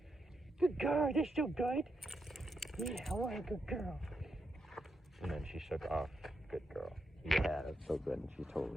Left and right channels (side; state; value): both; normal; correlation 0.83